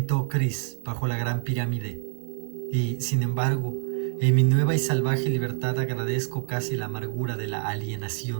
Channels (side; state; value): left; silent; digital silence